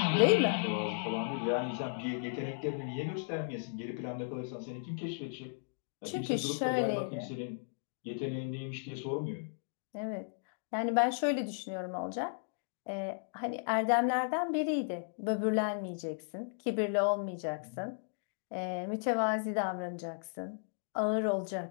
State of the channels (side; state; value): right; silent; digital silence